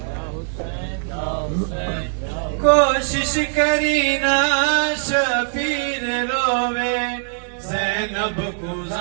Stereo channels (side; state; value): left; silent; digital silence